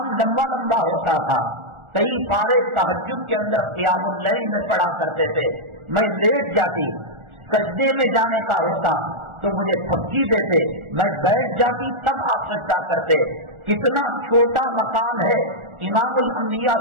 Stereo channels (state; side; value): late; left; 1.4 ms